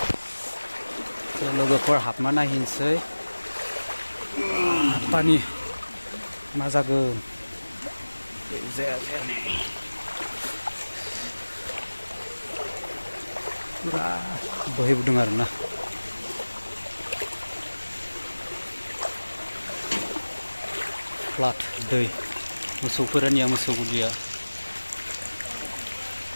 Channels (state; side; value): inverted; both; correlation -1.00